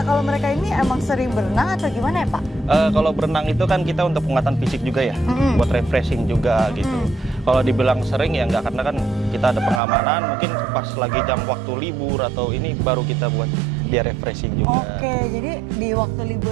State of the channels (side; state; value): left; drops out; at 9.8 s